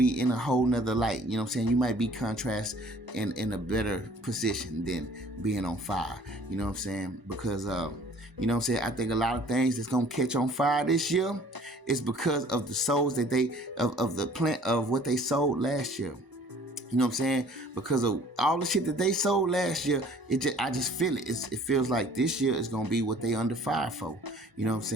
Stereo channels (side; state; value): left; late; 1.0 ms